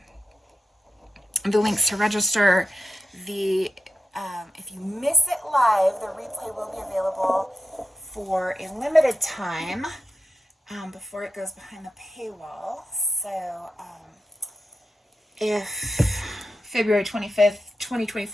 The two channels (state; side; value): normal; both; correlation 0.89